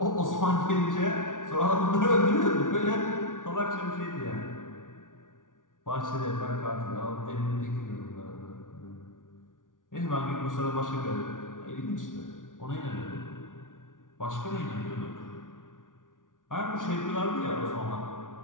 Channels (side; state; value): right; late; 0.88 ms